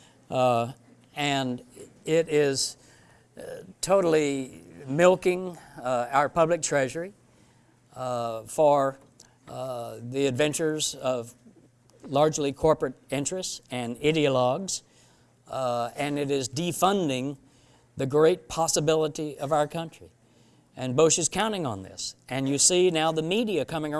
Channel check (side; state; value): both; identical; correlation 1.00